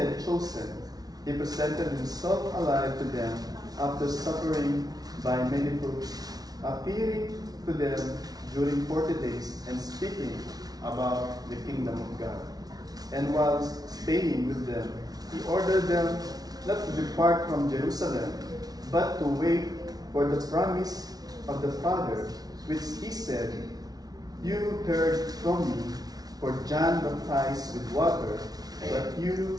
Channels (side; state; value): left; late; 0.19 ms